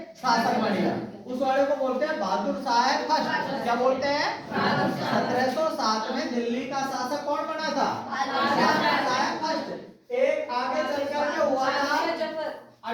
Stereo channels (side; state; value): both; identical; correlation 1.00